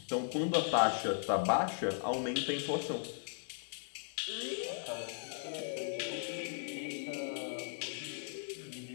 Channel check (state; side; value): silent; right; digital silence